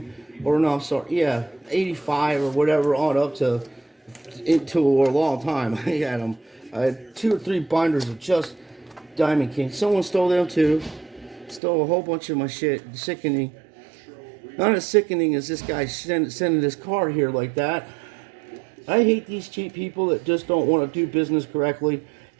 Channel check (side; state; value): left; drops out; at 11.6 s